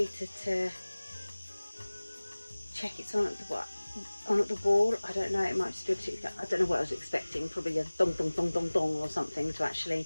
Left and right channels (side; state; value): both; inverted; correlation -1.00